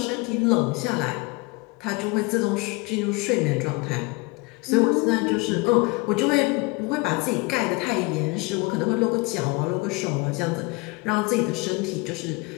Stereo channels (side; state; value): right; quieter; 26.2 dB